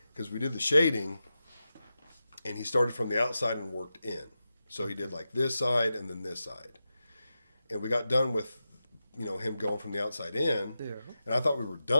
Because we did the shading, and he started from the outside and worked in. So he did like this side and then this side. And we got done with, him going from the outside in. Yeah. And I thought we were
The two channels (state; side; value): inverted; both; correlation -0.91